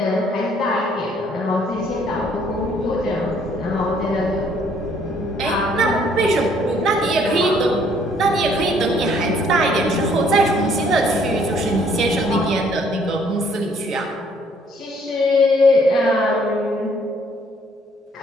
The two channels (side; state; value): both; normal; correlation 0.63